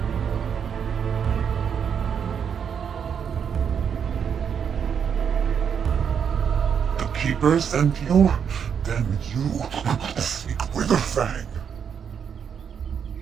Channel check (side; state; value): left; quieter; 7.5 dB